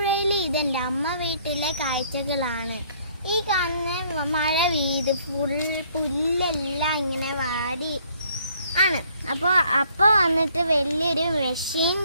ഇതെന്റെ അമ്മ വീട്ടിലെ കാഴ്ചകളാണ്. ഈ കാണുന്ന മഴ പെയ്ത് പുല്ലെല്ലാം ഇങ്ങനെ വാടി ആണ്. അപ്പോൾ വന്നിട്ട് വലിയൊരു മെഷീൻ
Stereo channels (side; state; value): both; inverted; correlation -0.63